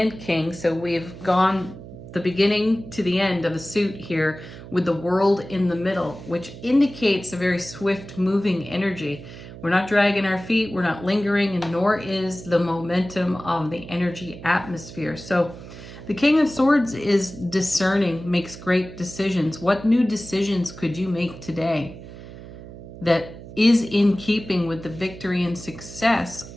King. So we've gone the beginning to the end of a suit here with the World in the middle, which indicates a very swift moving energy. We're not dragging our feet, we're not lingering, and nor is the momentum of the energy atmosphere. So the King of Swords is discerning, makes great decisions. What new decisions could you make today that is in keeping with the victory and success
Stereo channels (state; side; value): noise; right; hum, 14 dB below the sound